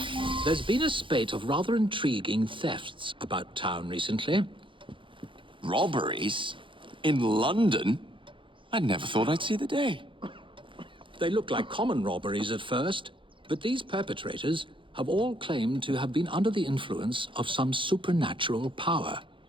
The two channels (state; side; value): late; left; 0.25 ms